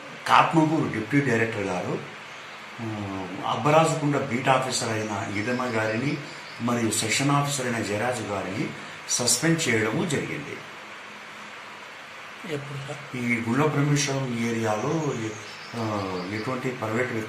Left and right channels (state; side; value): identical; both; correlation 1.00